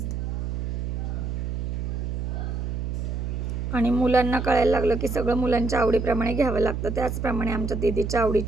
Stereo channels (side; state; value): right; noise; hum, 3 dB below the sound